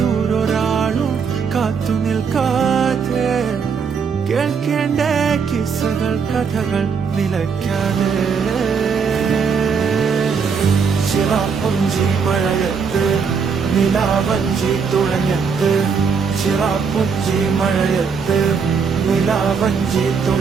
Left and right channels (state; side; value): quieter; left; 5.9 dB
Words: കാത്തു നിൽക്കാതെ കേൾക്കേണ്ട കിസ്സകൾ കഥകൾ നിലയ്ക്കാതെ ചിറാപ്പുഞ്ചി മഴയത്ത് നിലാവഞ്ചി തുഴഞ്ഞത്ത് ചിറാപ്പുഞ്ചി മഴയത്ത് നിലാവഞ്ചി